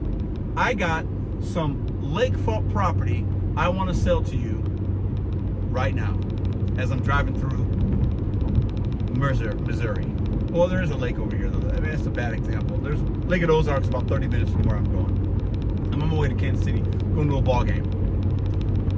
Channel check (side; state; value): both; identical; correlation 1.00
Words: I got some lakefront property I want to sell to you right now as I'm driving through Missouri. Well, there is a lake over here, though. I mean, that's a bad example. There's Lake of the Ozarks about 30 minutes from where I'm going. I'm on my way to Kansas City, going to a ball game.